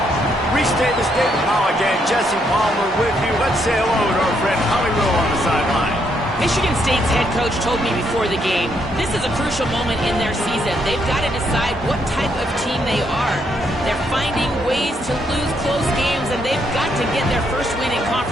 Restate the state, Pollock and Jesse Palmer with you. Let's say hello to our friend Holly Rowe on the sideline. Michigan State's head coach told me before the game, this is a crucial moment in their season. They've got to decide what type of team they are. They're finding ways to lose close games, and they've got to get their first win in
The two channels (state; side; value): normal; both; correlation 0.74